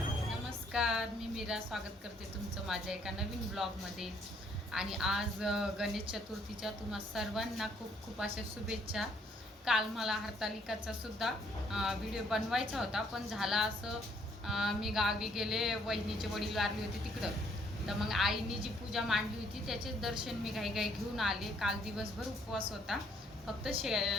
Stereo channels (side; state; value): both; normal; correlation 0.67